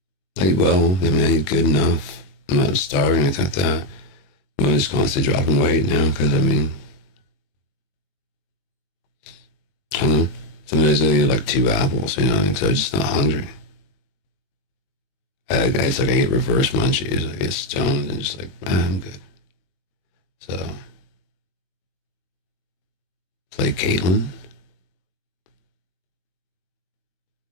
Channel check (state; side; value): late; right; 21 ms